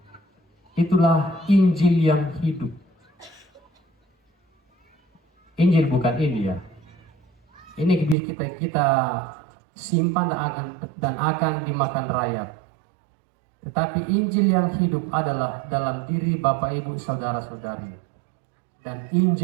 Itulah Injil yang hidup. Injil bukan ini ya. Ini kita simpan dan akan dimakan rayap. Tetapi Injil yang hidup adalah dalam diri Bapak Ibu Saudara-saudari. Dan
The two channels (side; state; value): left; drops out; at 8.2 s